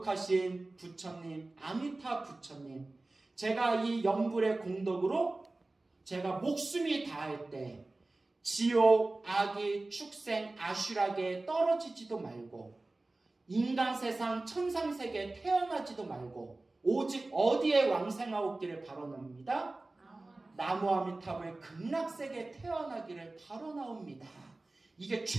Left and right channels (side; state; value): left; quieter; 3.0 dB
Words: 부처님, 아미타 부처님, 제가 이 연불의 공덕으로 제가 목숨이 다할 때 지옥, 악의, 축생, 아슈락에 떨어지지도 말고 인간 세상, 천상 세계에 태어나지도 말고 오직 어디에 왕생하옵기를 바라옵니다. 나무아미타불 극락세계에 태어나기를 바라옵니다. 이게